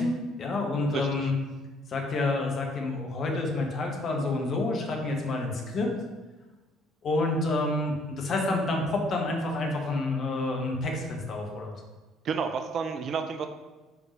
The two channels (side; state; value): both; normal; correlation 0.64